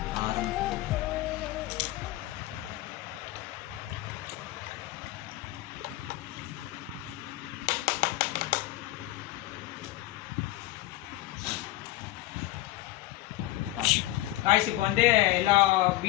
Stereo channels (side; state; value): right; quieter; 16.9 dB